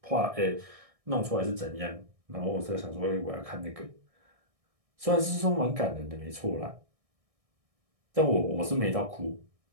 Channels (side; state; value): left; late; 1.6 ms